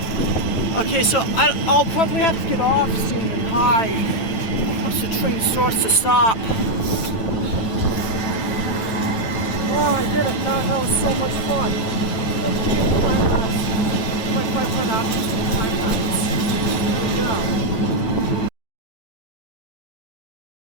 Okay, so I'll probably have to get off soon and hide once the train starts to stop. Oh, I did it. That was so much fun. Let's change the time lapse. Like 5 hours time lapse. Here we go.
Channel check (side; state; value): right; late; 9.0 ms